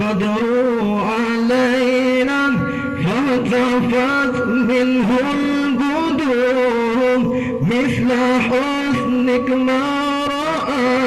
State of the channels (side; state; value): both; identical; correlation 1.00